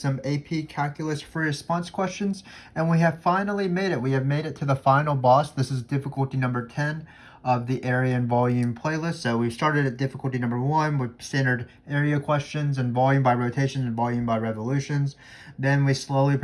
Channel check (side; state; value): both; identical; correlation 1.00